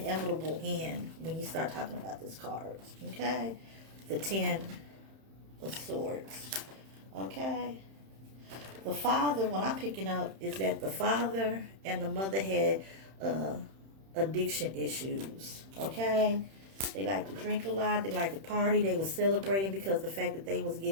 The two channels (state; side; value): late; left; 31 ms